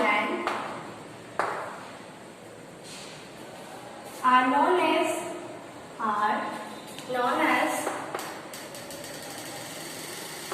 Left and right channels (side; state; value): both; identical; correlation 1.00